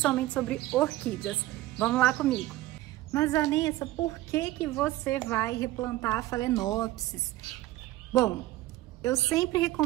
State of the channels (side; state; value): left; quieter; 16.5 dB